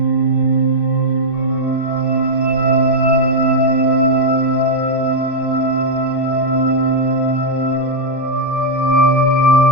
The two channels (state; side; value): late; right; 2.6 ms